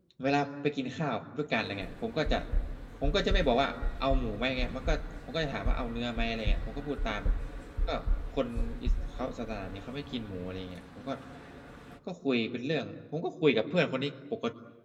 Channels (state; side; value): identical; both; correlation 1.00